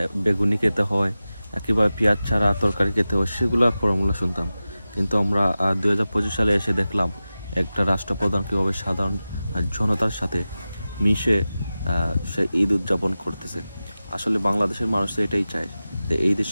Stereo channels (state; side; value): inverted; both; correlation -0.95